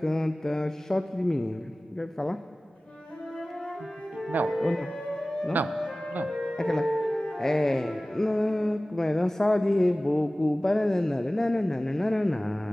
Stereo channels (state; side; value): normal; both; correlation 0.98